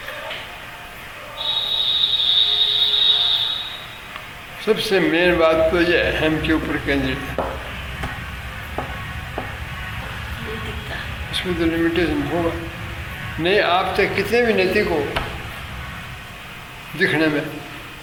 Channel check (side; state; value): both; identical; correlation 1.00